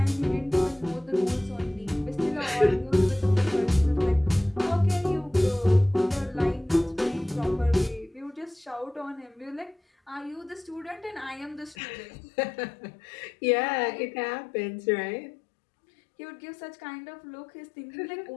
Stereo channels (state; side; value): drops out; right; at 11.8 s